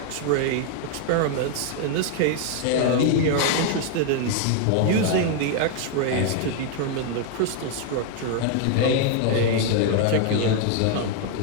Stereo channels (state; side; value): different; both; correlation 0.00